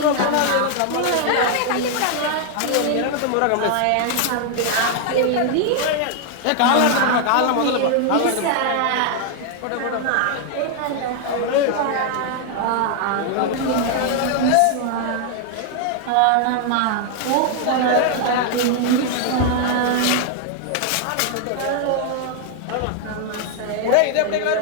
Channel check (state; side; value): different; both; correlation 0.00